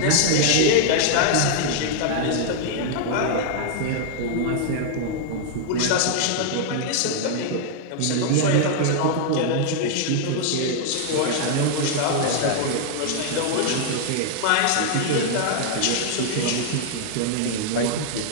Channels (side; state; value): both; different; correlation -0.01